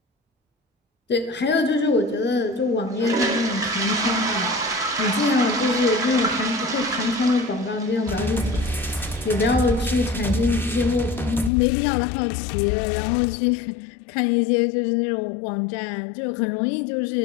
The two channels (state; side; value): drops out; right; at 11.5 s